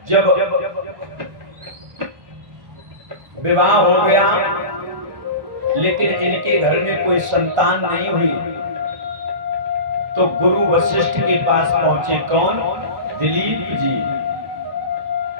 जब विवाह हो गया लेकिन इनके घर में कोई संतान नहीं हुई तो गुरु वशिष्ठ के पास पहुंचे। कौन? दिलीप जी।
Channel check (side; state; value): left; late; 1.5 ms